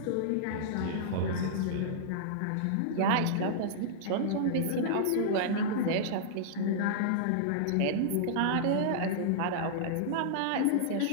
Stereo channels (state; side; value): different; both; correlation -0.02